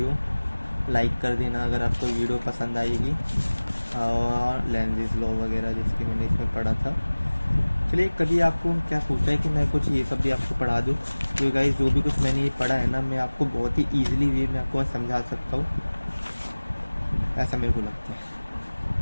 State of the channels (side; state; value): both; inverted; correlation -1.00